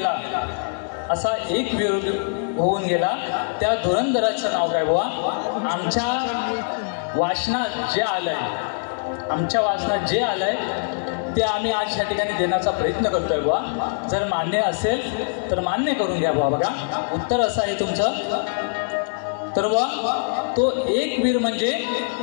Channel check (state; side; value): silent; right; digital silence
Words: असा एक वीर होऊन गेला, त्या धुरंधराचं नाव काय बुवा? आमच्या वाचनात जे आलंय ते आम्ही आज या ठिकाणी देण्याचा प्रयत्न करतोय बुवा. जर मान्य असेल तर मान्य करून घ्या बुवा. बघा उत्तर असं आहे तुमचं. तर बुवा तो एक वीर म्हणजे